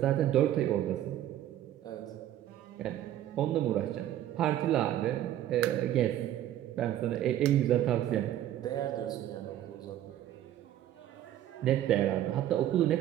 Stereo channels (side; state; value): left; quieter; 12.4 dB